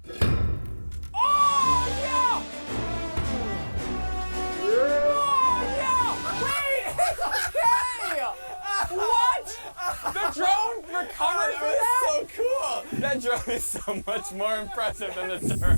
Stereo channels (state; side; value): inverted; both; correlation -1.00